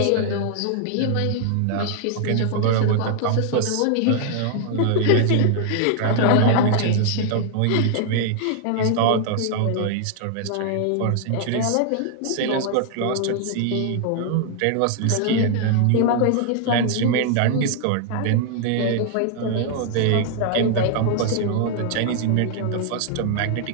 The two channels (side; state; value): both; different; correlation 0.00